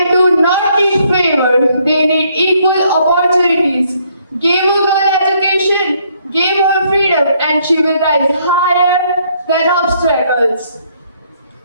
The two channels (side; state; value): both; inverted; correlation -0.68